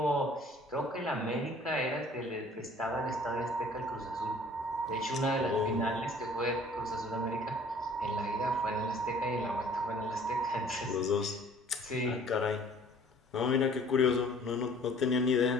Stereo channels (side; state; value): both; normal; correlation 0.53